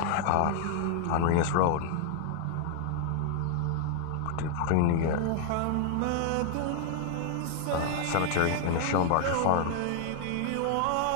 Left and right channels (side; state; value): both; different; correlation 0.00